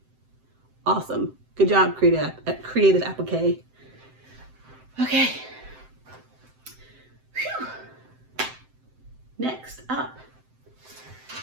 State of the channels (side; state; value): left; late; 7.7 ms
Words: Awesome. Good job, Creative Applique. Okay. Whew. Next up,